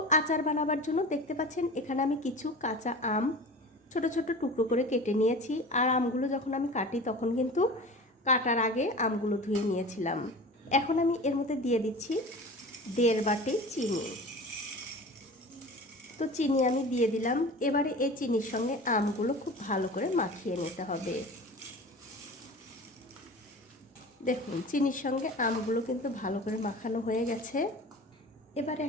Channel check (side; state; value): both; normal; correlation 0.36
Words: আচার বানাবার জন্য দেখতে পাচ্ছেন এখানে আমি কিছু কাঁচা আম ছোট ছোট টুকরো করে কেটে নিয়েছি। আর আমগুলো যখন আমি কাটি তখন কিন্তু কাটার আগে আমগুলো ধুয়ে নিয়েছিলাম। এখন আমি এর মধ্যে দিয়ে দিচ্ছি 1.5 বাটি চিনি। তো চিনি আমি দিয়ে দিলাম। এবারে এই চিনির সঙ্গে আমগুলো খুব ভালো করে মাখিয়ে নিতে হবে। দেখুন চিনির সঙ্গে আমগুলো কিন্তু ভালো করে মাখানো হয়ে গেছে। এবারে